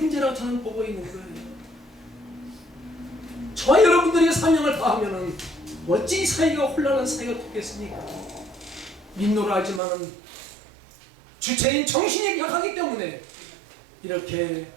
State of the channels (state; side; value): drops out; left; at 9.8 s